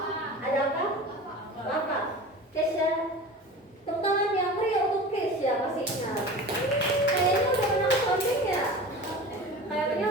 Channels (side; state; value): both; normal; correlation 0.35